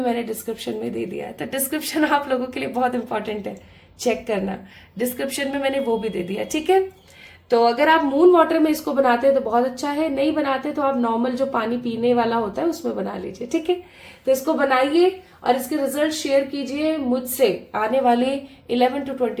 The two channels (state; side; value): identical; both; correlation 1.00